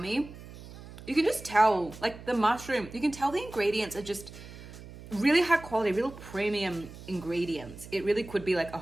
You can just tell, like the mushroom, you can tell the ingredients are just really high quality, real premium ingredients. It really could be like a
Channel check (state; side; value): noise; right; hum, 16 dB below the sound